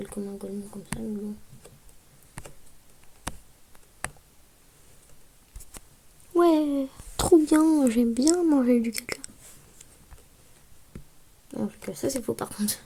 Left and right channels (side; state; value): both; identical; correlation 1.00